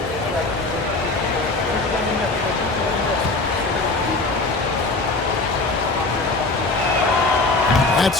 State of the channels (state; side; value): quieter; right; 3.4 dB